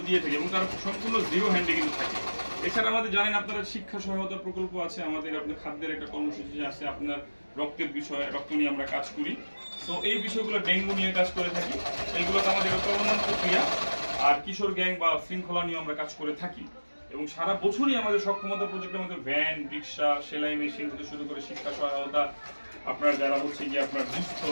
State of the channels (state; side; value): inverted; both; correlation -1.00